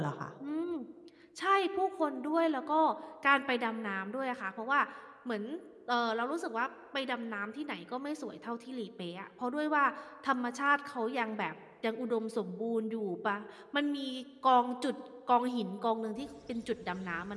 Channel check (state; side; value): identical; both; correlation 1.00